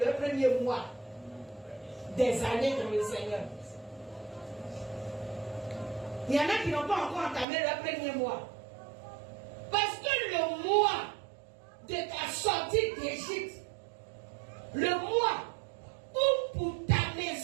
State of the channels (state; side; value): drops out; left; at 7.5 s